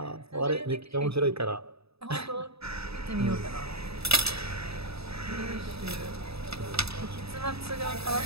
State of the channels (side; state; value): left; late; 0.78 ms